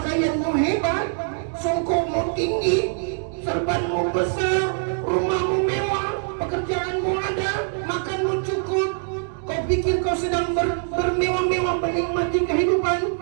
hebat, songkokmu tinggi, serbanmu besar, rumahmu mewah, pekerjaanmu ada, makanmu cukup. Kau pikir kau sedang bermewah-mewah menikmati kehidupan?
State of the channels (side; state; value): left; silent; 57 dB below the other